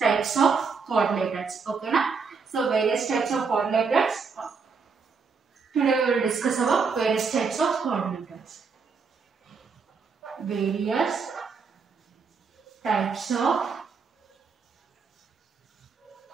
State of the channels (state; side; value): quieter; left; 5.2 dB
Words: of coordinators. Okay, na? So various types of coordinators. Today we will discuss about various types of coordinators. Various types of